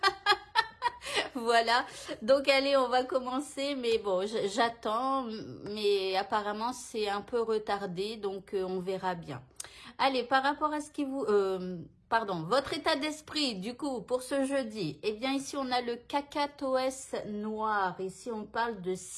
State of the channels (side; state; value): both; identical; correlation 1.00